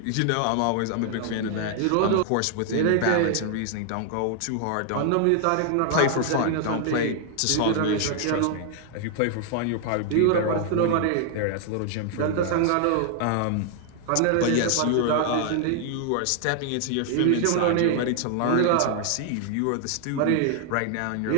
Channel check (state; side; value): different; both; correlation 0.00